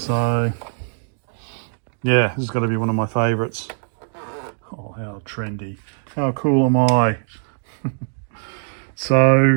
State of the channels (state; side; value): silent; left; digital silence